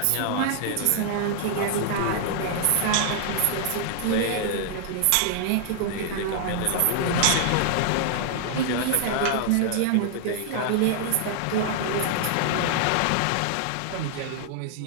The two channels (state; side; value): different; both; correlation -0.01